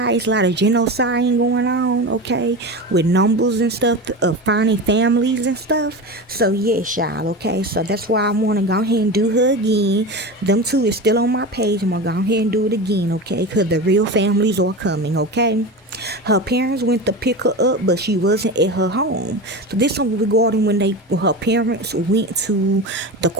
It's a lot of genocide going on, okay, with numbers and stuff of finding families and stuff. So yes, y'all, okay. So that's why I want to go ahead and do her again. Them two is still on my page. I'm gonna go ahead and do it again, okay, because the real families are coming, okay. Her parents went to pick her up, but she wasn't at her home. So this one regarding when her parents went to the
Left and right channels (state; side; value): normal; both; correlation 0.26